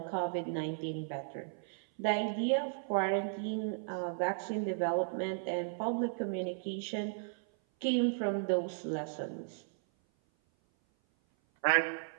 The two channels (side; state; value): left; silent; 54 dB below the other